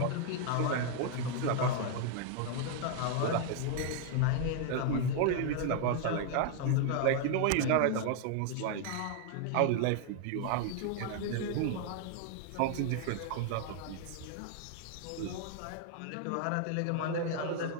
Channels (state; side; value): different; both; correlation 0.00